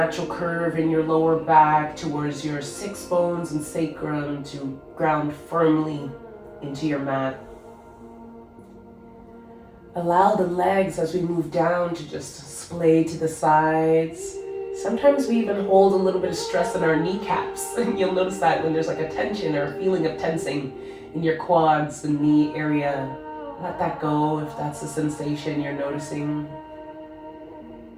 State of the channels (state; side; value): identical; both; correlation 1.00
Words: curve in your lower back towards your 6 bones and sacrum to ground firmly into your mat. Allow the legs as we move down to just splay to the sides. Sometimes we even hold a little bit of stress in our kneecaps. And you'll notice that when there's like a tension or a feeling of tensing in your quads and knee area. Let that go if that's a sensation you're noticing.